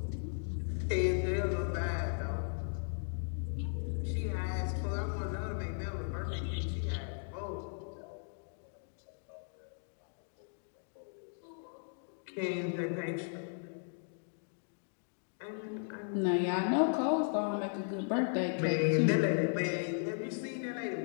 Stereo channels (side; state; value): right; silent; digital silence